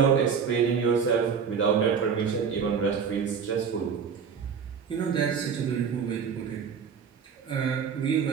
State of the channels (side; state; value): left; quieter; 6.6 dB